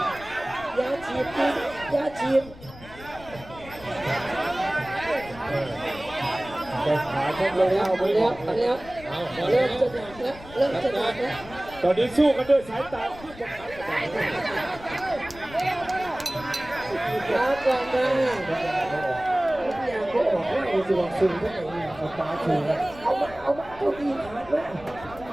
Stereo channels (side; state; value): left; noise; rumble, 18 dB below the sound